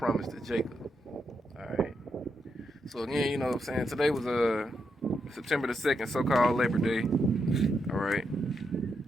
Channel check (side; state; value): both; normal; correlation 0.82